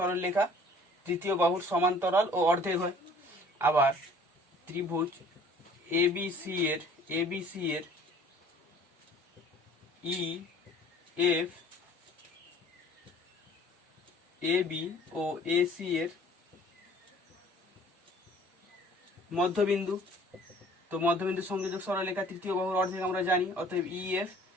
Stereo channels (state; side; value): normal; both; correlation 0.52